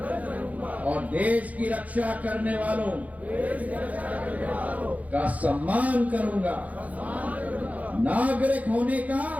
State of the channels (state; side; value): late; left; 0.072 ms